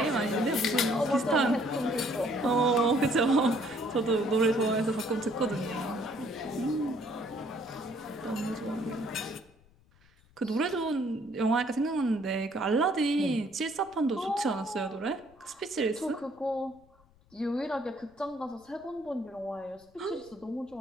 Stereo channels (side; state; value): left; noise; rumble, 30 dB below the sound